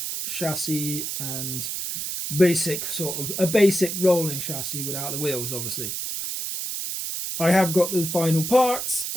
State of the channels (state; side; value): noise; right; hiss, 4 dB below the sound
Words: chassis and a basic rolling chassis without the wheels, obviously. I have got the final parts,